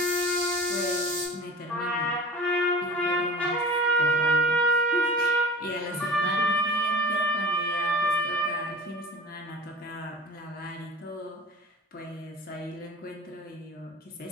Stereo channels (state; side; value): normal; both; correlation 0.37